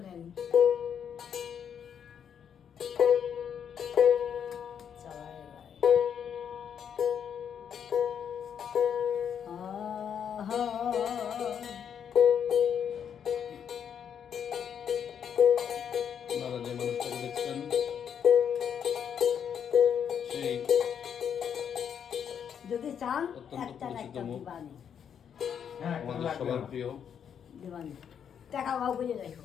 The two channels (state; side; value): quieter; right; 8.1 dB